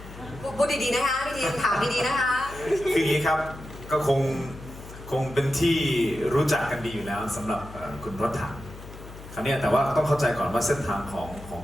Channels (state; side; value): noise; left; hum, 15 dB below the sound